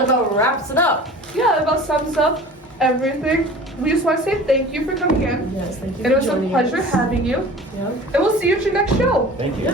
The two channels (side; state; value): both; normal; correlation 0.41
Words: about wraps it up. Yeah, that about sums up everything. We just want to say thank you for coming in. Yes, thank you And it for was a joining pleasure us. having you. Yeah. And we'll see you at your next show. Thank you. It's